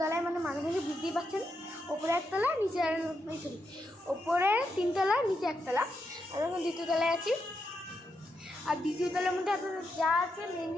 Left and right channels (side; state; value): both; normal; correlation 0.83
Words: তলায় মানে মাঝামাঝি বুঝতেই পারছেন। ওপরে একতলা, নিচে ওপরে তিনতলা, নিচে একতলা। আর এখন দ্বিতীয় তলায় আছি। আর দ্বিতীয় তলার মধ্যে আপনাদের যা আছে মেন